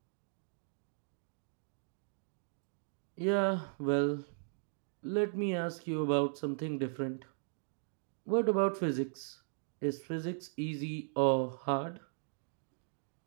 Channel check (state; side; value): silent; left; digital silence